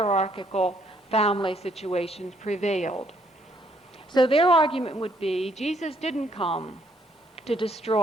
family situations prevailed. So their argument would be Jesus didn't come to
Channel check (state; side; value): normal; both; correlation 0.68